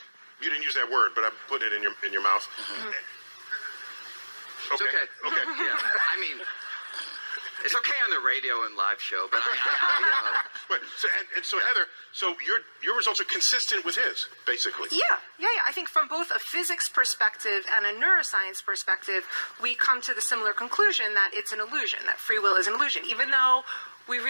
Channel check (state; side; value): inverted; both; correlation -1.00